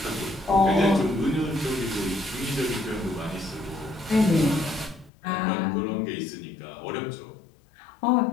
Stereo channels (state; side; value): drops out; right; at 5.1 s